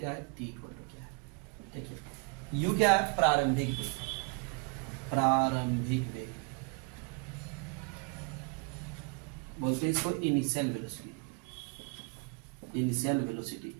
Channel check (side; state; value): left; quieter; 31.0 dB